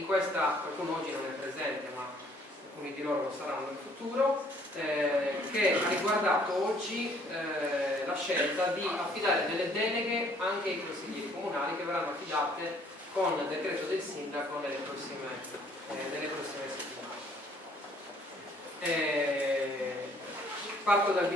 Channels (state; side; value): normal; both; correlation 0.61